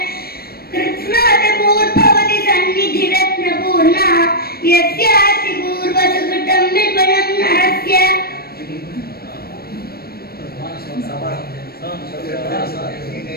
कृत्स्नातपूर्भवति सन्निधिरत्नपूर्णा यस्यास्ति पूर्वसुकृतं विपुलं नरस्य।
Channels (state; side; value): late; right; 0.45 ms